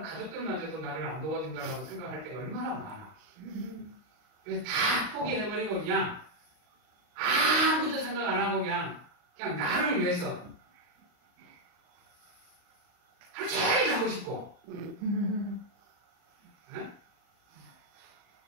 가족들마저도 나를 안 도와준다고 생각할 때가 얼마나 많아. 그래서 다 포기해버리고 그냥 아무것도 생각 안 하고 그냥 나를 위해서 하루 종일 자고 싶고 네?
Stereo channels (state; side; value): late; left; 39 ms